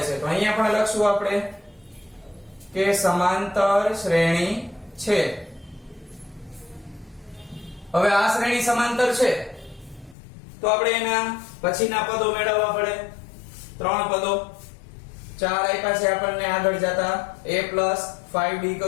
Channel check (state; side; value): drops out; right; at 10.2 s